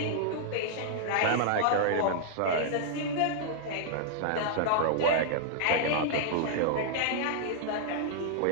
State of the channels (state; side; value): different; both; correlation -0.01